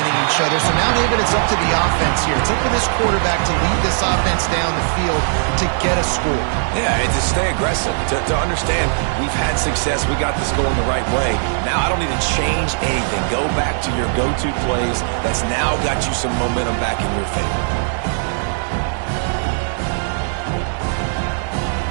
each other. So now, David, it's up to the offense here. It's up to this quarterback to lead this offense down the field to get a score. Yeah, and to stay aggressive, to understand we've had success, we got this going the right way. Now I don't need to change anything. Go back to your go-to plays. That's now got you some momentum back in your favor.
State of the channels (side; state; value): left; silent; digital silence